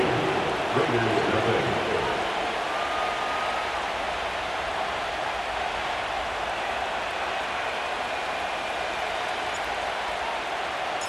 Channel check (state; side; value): identical; both; correlation 1.00